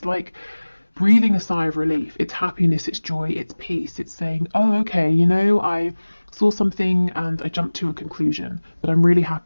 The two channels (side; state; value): both; inverted; correlation -1.00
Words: like breathing a sigh of relief. It's happiness, it's joy, it's peace. It's saying, oh, okay, you know, I saw something and I jumped to a conclusion, but I'm really